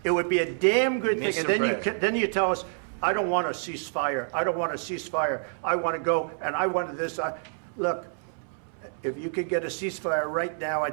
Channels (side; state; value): left; silent; 60 dB below the other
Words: It would be a damn good thing. Mr. And then President. then you tell us, I don't want a ceasefire. I don't want a ceasefire. I want to go, and I want this. Look, if you could get a ceasefire right now, I